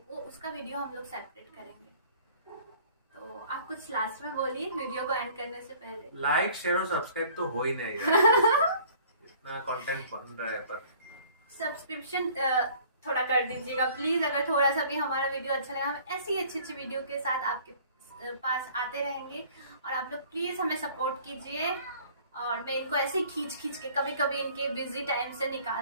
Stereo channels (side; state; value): both; inverted; correlation -0.52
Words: वो उसका वीडियो हम लोग सेपरेट करेंगे। तो आप कुछ लास्ट में बोलिए वीडियो को एंड करने से पहले। लाइक शेयर और सब्सक्राइब तो हो ही नहीं यार। इतना कंटेंट बन रहा है, पर सब्सक्रिप्शन थोड़ा कर दीजिएगा प्लीज। अगर थोड़ा सा भी हमारा वीडियो अच्छा लगा, हम ऐसी अच्छी अच्छी वीडियो के साथ आपके पास आते रहेंगे, और आप लोग प्लीज हमें सपोर्ट कीजिए। और मैं इनको ऐसे ही खींच खींच के कभी कभी इनके बिजी टाइम से